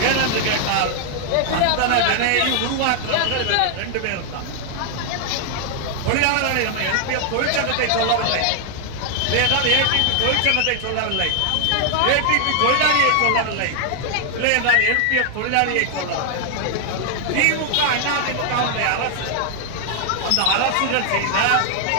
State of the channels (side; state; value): both; different; correlation 0.00